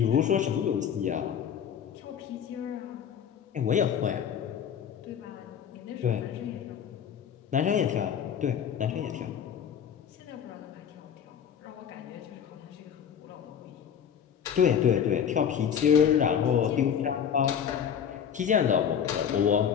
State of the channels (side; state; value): right; quieter; 8.3 dB